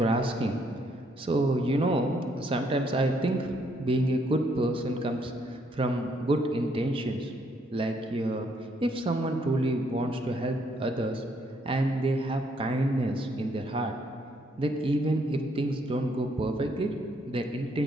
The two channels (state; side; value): normal; both; correlation 0.71